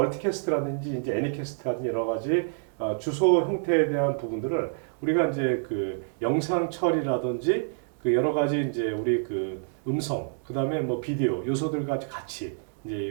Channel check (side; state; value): left; silent; digital silence